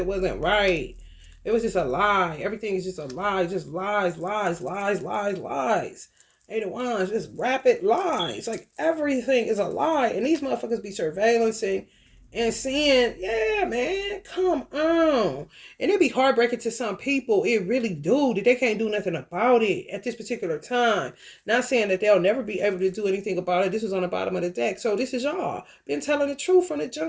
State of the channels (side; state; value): both; identical; correlation 1.00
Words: wasn't right. It was just a lie. Everything is just a lie. Just lies, lies, lies, lies, lies. Eight of Wands, just rapid lies. Like everything is a lie. And these motherfuckers be surveillancing and seeing, yeah, man, come on. And it be heartbreaking to some people. It really do. That they can't do nothing about it at this particular time. Not saying that they'll never be able to do anything about it. This was on the bottom of the deck. So this is y'all. Been telling the truth from the